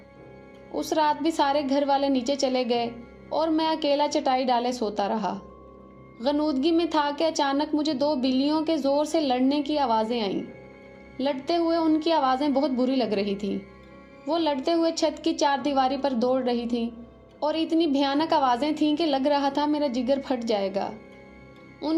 اس رات بھی سارے گھر والے نیچے چلے گئے اور میں اکیلا چٹائی ڈالے سوتا رہا۔ غنودگی میں تھا کہ اچانک مجھے 2 بلیوں کے زور سے لڑنے کی آوازیں آئیں۔ لڑتے ہوئے ان کی آوازیں بہت بری لگ رہی تھیں۔ وہ لڑتے ہوئے چھت کی 4 دیواری پر دوڑ رہی تھیں اور اتنی بھیانک آوازیں تھیں کہ لگ رہا تھا میرا جگر پھٹ جائے گا۔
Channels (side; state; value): both; identical; correlation 1.00